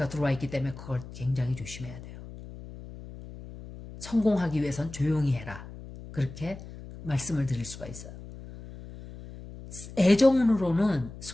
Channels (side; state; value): left; noise; hum, 14 dB below the sound